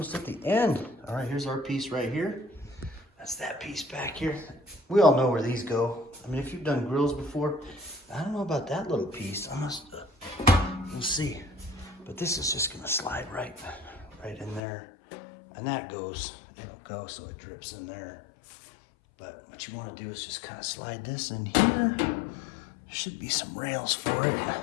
at the end. All right, here's our piece right here. That's that piece back here. We all know where these go. I mean, if you've done grills before, I don't know about that little piece. We'll see. But this is just gonna slide right in there. And that goes, it'll go so it drips in there. But what you wanna do is just kind of slide this in here. There should be some rails for it.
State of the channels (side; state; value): right; drops out; at 14.6 s